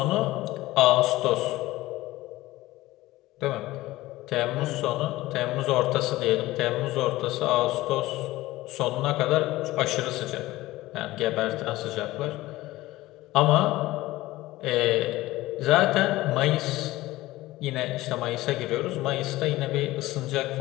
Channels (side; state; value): right; quieter; 17.6 dB